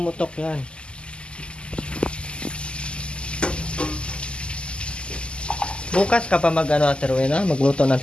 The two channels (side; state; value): right; late; 0.051 ms